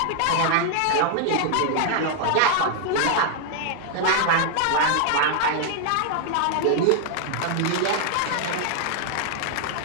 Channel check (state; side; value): different; both; correlation 0.00